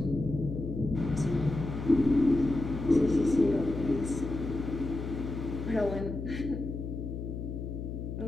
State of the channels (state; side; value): noise; left; hum, 6 dB below the sound